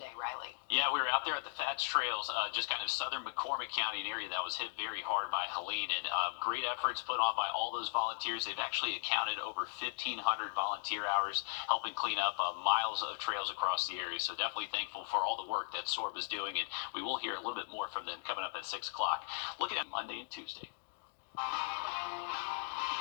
Riley. Yeah, we were out there at the Fats Trails, just kind of southern McCormick County, an area that was hit very hard by Helene, and great efforts put on by all those volunteers. They've actually accounted over 1,500 volunteer hours helping clean up miles of trails across the area. So definitely thankful for all the work that SORB is doing, and we will hear a little bit more from them coming up at 6 o'clock. Looking at Monday and Tuesday.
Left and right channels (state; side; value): silent; right; 53 dB below the other